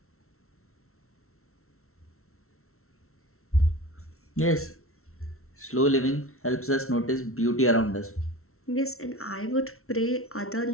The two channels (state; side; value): late; right; 0.63 ms